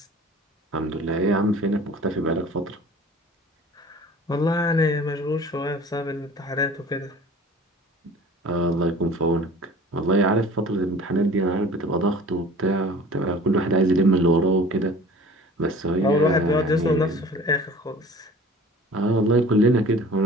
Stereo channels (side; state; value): both; normal; correlation 0.44